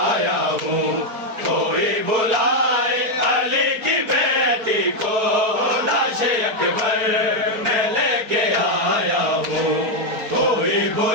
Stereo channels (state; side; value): late; left; 4.4 ms